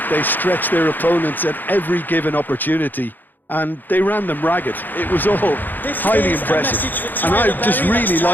They stretched their opponents at every given opportunity, and they ran them ragged. It was all highly impressive, and I just really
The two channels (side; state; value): right; late; 0.088 ms